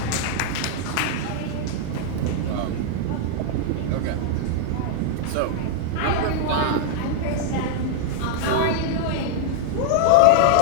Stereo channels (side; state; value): both; different; correlation 0.00